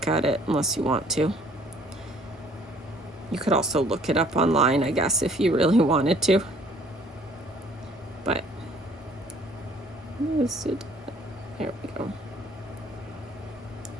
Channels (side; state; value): both; normal; correlation 0.58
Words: at it unless you want to. You could also look it up online, I guess, if you really wanted to. But there we go.